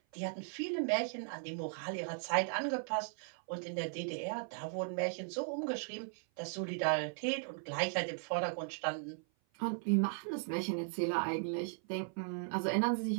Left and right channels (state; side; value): silent; left; 53 dB below the other